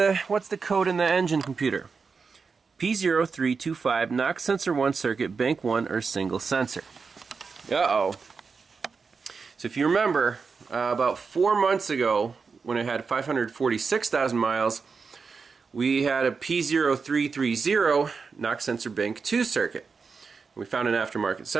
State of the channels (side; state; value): left; quieter; 5.1 dB